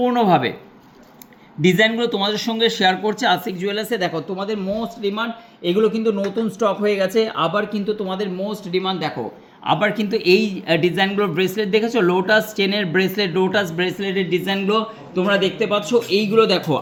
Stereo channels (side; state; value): both; identical; correlation 1.00